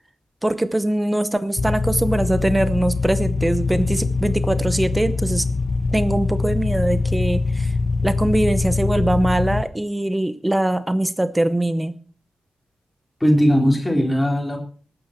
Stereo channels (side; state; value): both; normal; correlation 0.96